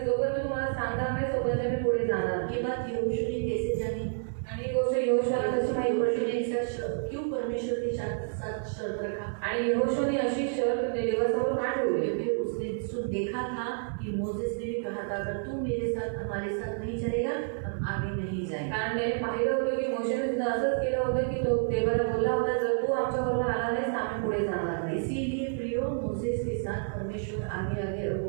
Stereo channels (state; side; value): silent; left; 58 dB below the other